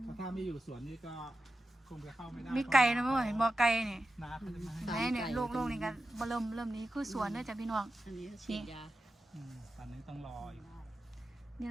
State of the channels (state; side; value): normal; both; correlation 0.91